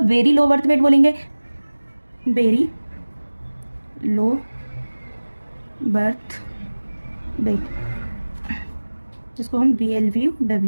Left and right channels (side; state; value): both; inverted; correlation -1.00